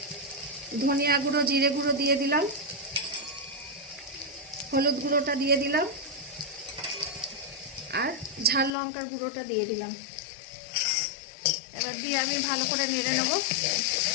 ধনিয়া গুঁড়ো, জিরে গুঁড়ো দিয়ে দিলাম, হলুদ গুঁড়োটা দিয়ে দিলাম, আর ঝাল লঙ্কার গুঁড়োটা দিয়ে দিলাম। এবার দিয়ে আমি ভালো করে নেড়ে নেব।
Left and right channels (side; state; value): right; drops out; at 8.8 s